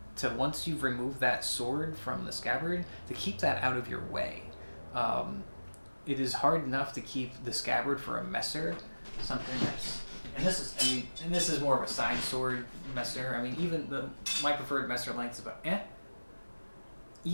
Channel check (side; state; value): both; inverted; correlation -1.00